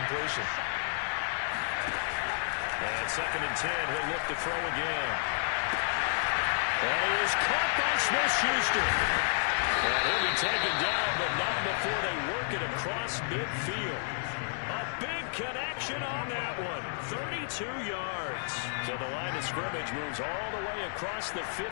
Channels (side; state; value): right; silent; digital silence